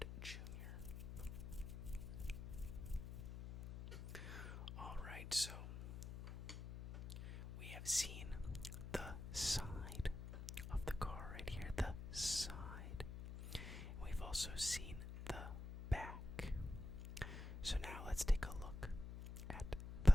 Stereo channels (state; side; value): noise; left; hum, 8 dB below the sound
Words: Jr. Alright, so we have seen the side of the car right here, the side. We've also seen the back. So now let's take a look at